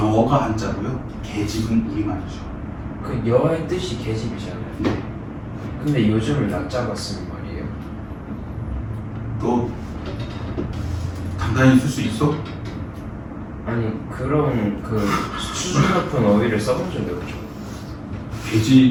한자고요. 계집은 우리말이죠. 그 여의 뜻이 개집이잖아요. 네. 근데 요즘을 낮잡아 쓰는 말이에요. 너 단단히 쓸 수 있어? 아니 그런 그 수준 높은 어휘를 써본 적이 없죠.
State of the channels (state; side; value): identical; both; correlation 1.00